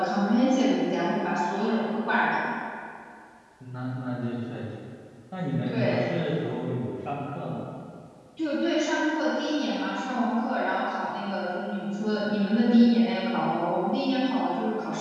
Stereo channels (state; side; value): identical; both; correlation 1.00